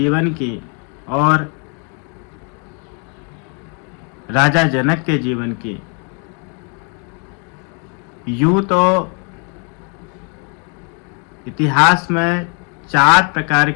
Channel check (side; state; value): right; quieter; 36.8 dB